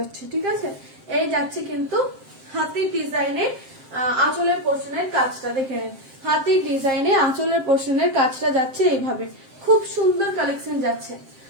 ঠিক আছে। এই যাচ্ছে কিন্তু হাতির ডিজাইনে আঁচলের পোর্শনের কাজটা, দেখে নেন হাতির ডিজাইনে আঁচলের পোর্শনের কাজটা যাচ্ছে এইভাবে, খুব সুন্দর কালেকশন যাচ্ছে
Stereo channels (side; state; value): left; late; 7.6 ms